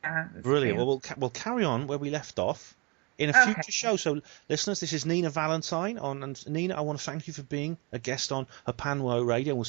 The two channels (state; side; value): quieter; left; 29.0 dB